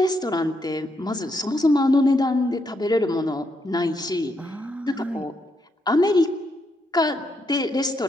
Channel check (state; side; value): normal; both; correlation 0.78